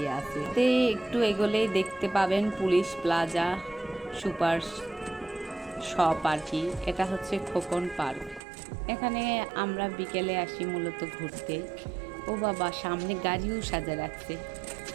আছে। একটু এগোলেই দেখতে পাবেন পুলিশ প্লাজা সুপার শপ আর কি। এটা হচ্ছে খোকন পার্ক। এখানে আমরা বিকেলে আসি মূলত ঘুরতে। ও বাবা, সামনে গাড়িও সাজা রাখছে।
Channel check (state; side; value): drops out; left; at 8.4 s